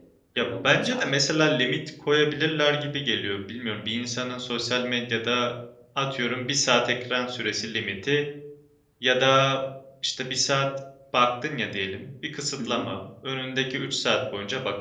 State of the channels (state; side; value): identical; both; correlation 1.00